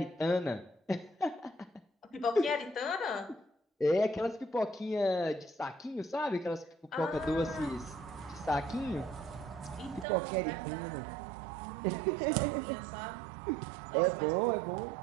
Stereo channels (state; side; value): drops out; left; at 10.1 s